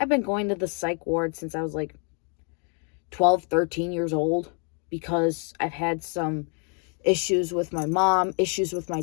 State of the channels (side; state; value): right; quieter; 38.6 dB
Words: been going to the psych ward since I was like 12, 13 years old because I've had some issues with my mom, issues with my